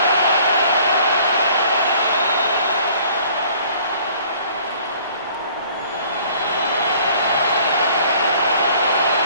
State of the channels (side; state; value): both; inverted; correlation -0.54